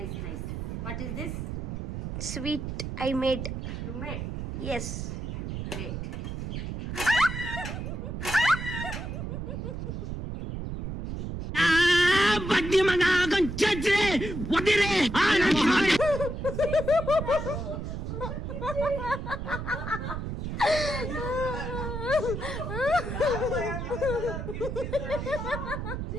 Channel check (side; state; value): right; noise; rumble, 5 dB below the sound